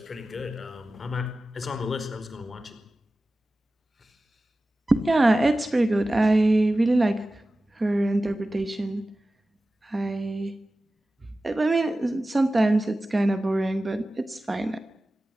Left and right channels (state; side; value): normal; both; correlation 0.96